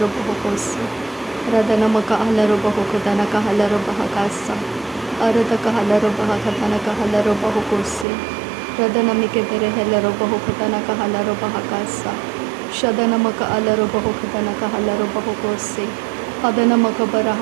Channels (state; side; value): drops out; left; at 8.1 s